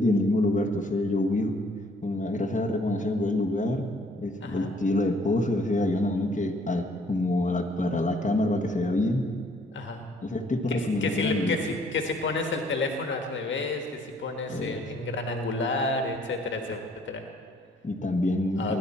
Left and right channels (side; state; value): both; normal; correlation 0.62